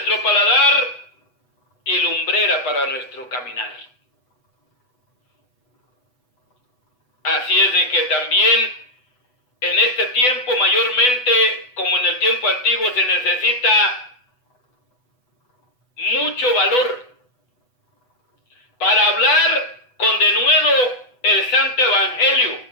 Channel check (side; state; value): right; late; 8.0 ms